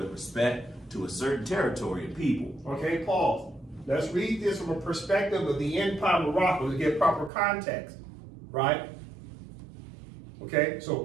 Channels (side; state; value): left; drops out; at 7.3 s